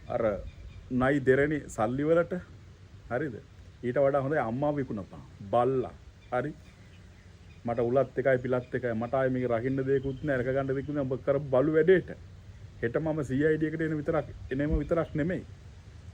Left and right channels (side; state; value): both; identical; correlation 1.00